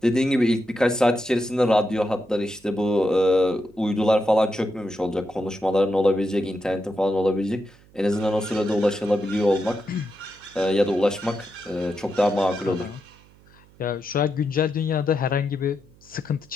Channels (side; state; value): right; noise; hum, 27 dB below the sound